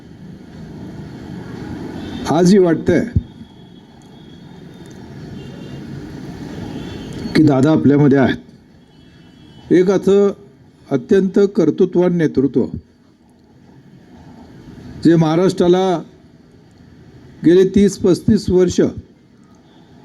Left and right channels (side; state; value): both; identical; correlation 1.00